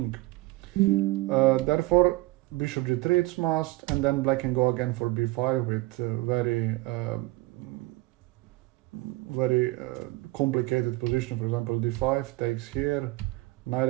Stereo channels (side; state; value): left; quieter; 20.3 dB